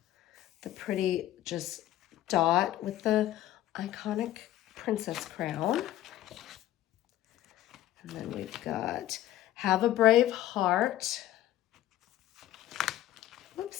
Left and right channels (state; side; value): quieter; right; 13.8 dB